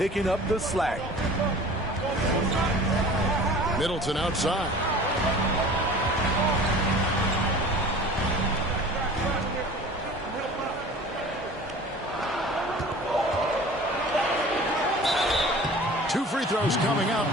up the slack. Middleton outside. Two free throws coming up,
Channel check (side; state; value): both; normal; correlation 0.42